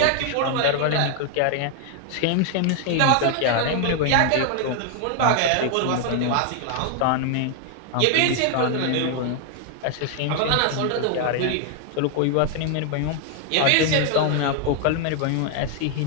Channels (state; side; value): different; both; correlation 0.00